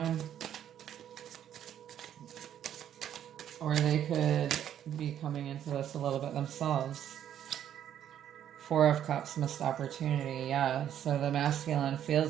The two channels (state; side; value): quieter; left; 10.3 dB